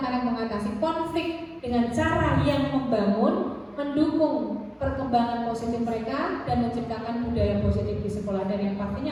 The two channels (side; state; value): both; identical; correlation 1.00